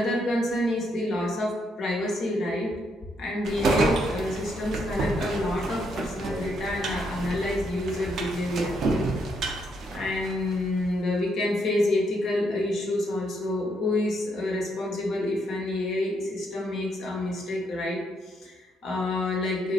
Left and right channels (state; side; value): normal; both; correlation 0.76